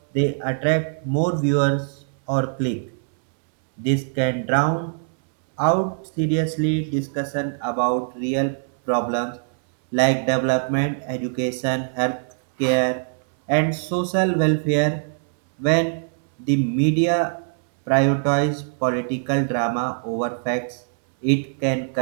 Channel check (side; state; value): left; silent; 63 dB below the other